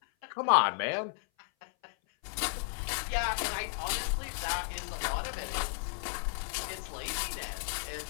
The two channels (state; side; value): silent; right; 55 dB below the other